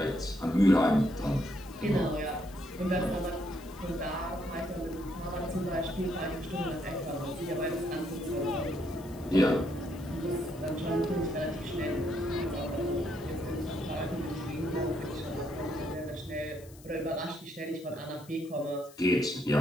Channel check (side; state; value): left; noise; hiss, 22 dB below the sound